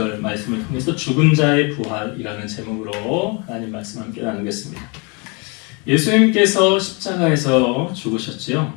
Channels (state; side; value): quieter; right; 31.7 dB